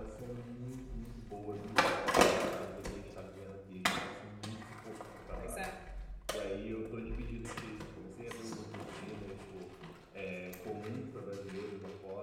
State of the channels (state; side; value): identical; both; correlation 1.00